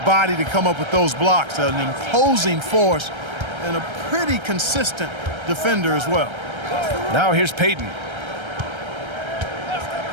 to come up with those blocks. An imposing force and a pretty consistent defender as well. Now here's Payton.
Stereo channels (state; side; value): late; left; 1.3 ms